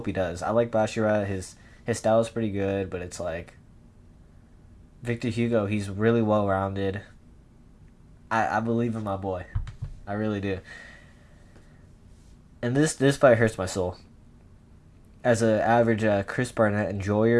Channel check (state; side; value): identical; both; correlation 1.00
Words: he does. I like Basharat. His style is pretty good, but it's like... Victor Hugo, he's really well-rounded. I believe in my boy. I really do. And this fight hurts my soul. As an average Chris Barnett